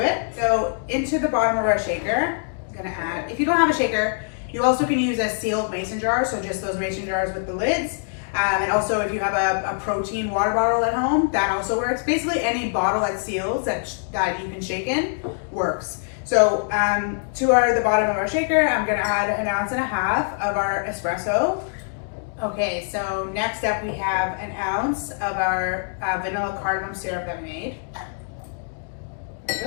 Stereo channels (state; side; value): silent; right; digital silence